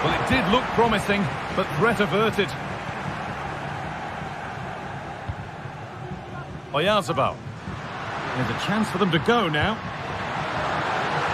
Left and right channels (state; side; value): identical; both; correlation 1.00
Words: Well, it did look promising, but threat averted. Oyarzabal. There's a chance for them to go now.